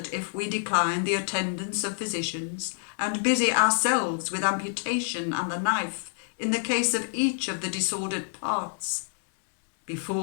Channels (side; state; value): right; silent; 60 dB below the other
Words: if we decline the attendance of physicians and busy ourselves with amputation and the knife in the case of each of the disordered parts,